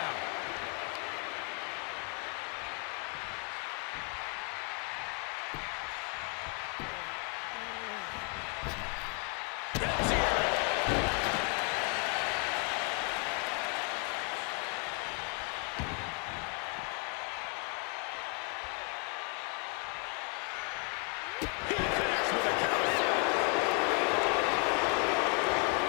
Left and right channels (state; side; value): quieter; right; 34.6 dB